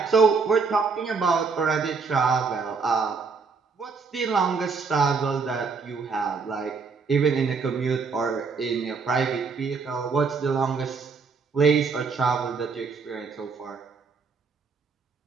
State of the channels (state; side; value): quieter; left; 4.9 dB